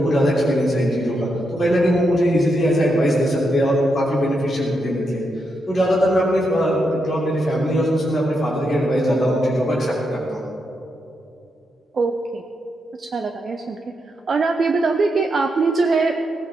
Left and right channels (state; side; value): normal; both; correlation 0.83